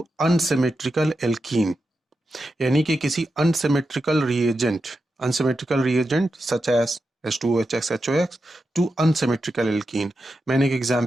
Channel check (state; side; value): normal; both; correlation 0.89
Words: अनसिमेट्रिकल एल्कीन, यानी कि किसी unsymmetrical reagent such as H2OH HOX to unsymmetrical alkene. मैंने एक